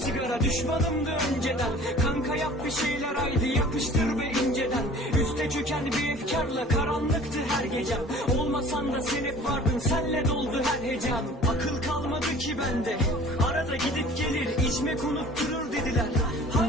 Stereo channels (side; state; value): both; normal; correlation 0.47